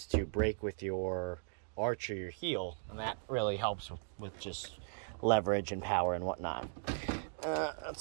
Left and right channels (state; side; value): silent; left; digital silence